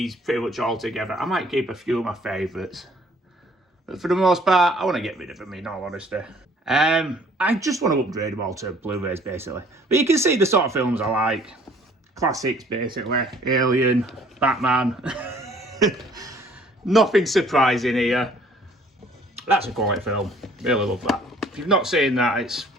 pretty much altogether. I might keep a few of my favourites. But for the most part, I want to get rid of them, in all honesty. I just want to upgrade them all to Blu-rays, basically. But you can see the sort of films I like. Classics, basically. Alien, Batman. Nothing surprising here. That's a quality film. Really love that. If you've not seen that, it's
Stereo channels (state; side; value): normal; both; correlation 0.57